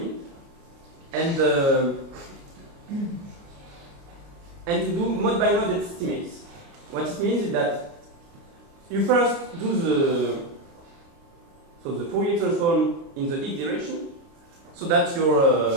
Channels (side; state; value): left; late; 29 ms